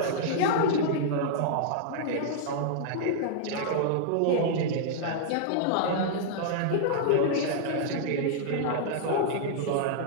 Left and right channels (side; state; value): both; different; correlation -0.01